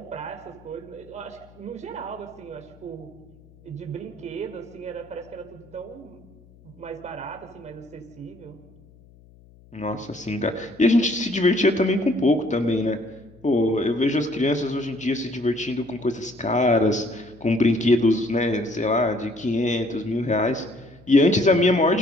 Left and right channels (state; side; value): noise; left; hum, 26 dB below the sound